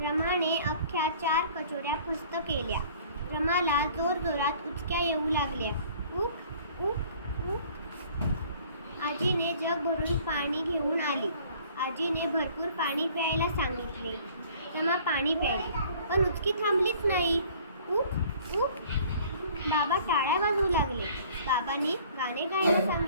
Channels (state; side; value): inverted; both; correlation -0.53